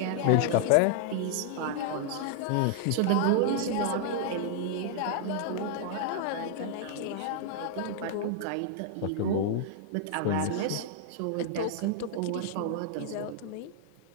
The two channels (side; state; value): both; different; correlation -0.01